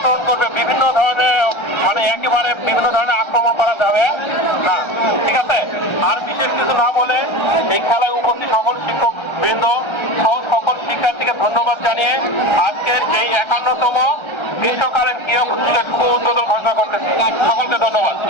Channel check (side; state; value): right; late; 1.3 ms